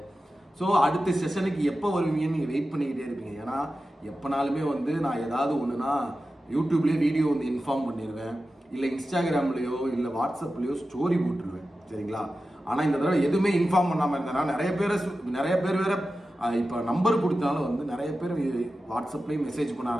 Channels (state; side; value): normal; both; correlation 0.93